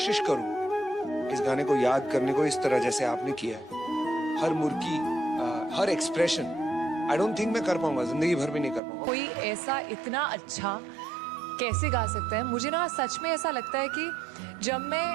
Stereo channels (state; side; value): drops out; left; at 8.8 s